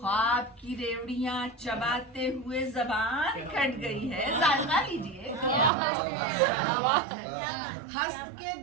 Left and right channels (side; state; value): left; drops out; at 5.7 s